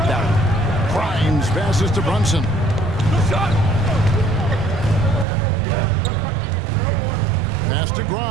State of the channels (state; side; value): drops out; left; at 5.2 s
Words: that one. Grimes passes to Brunson. Pass to